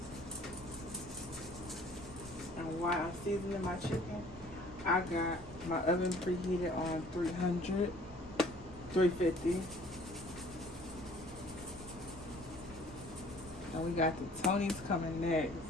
And while I'm seasoning my chicken, I got my oven preheated on 350. And we got the Tony's coming next.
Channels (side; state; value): left; noise; rumble, 17 dB below the sound